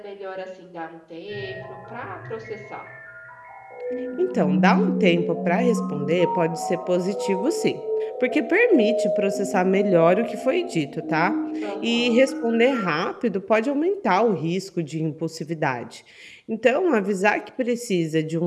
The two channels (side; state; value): both; identical; correlation 1.00